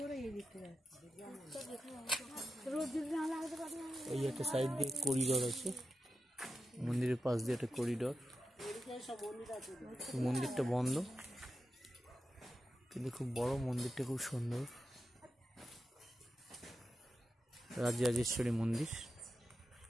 এই একটা সাইড দিয়ে করিডোর আছে, মন্দিরের পাশ দিয়ে একটা করিডোর। মন্দিরটা বন্ধ, কিন্তু খুব বড় মন্দিরটা, খুব সুন্দর। রাজরাজেশ্বরী মন্দির,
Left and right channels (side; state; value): both; normal; correlation 0.90